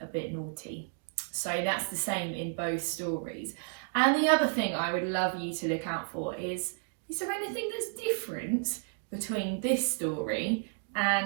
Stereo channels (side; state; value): left; silent; digital silence